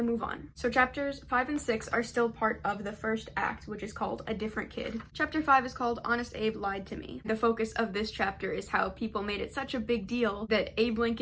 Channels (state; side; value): identical; both; correlation 1.00